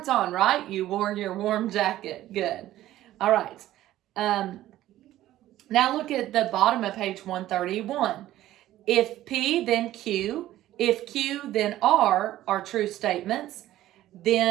on, right? You wore your warm jacket. Good. All right. Now look at the bottom of page 131. If P, then Q. If Q, then R are true statements,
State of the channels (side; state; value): left; quieter; 14.2 dB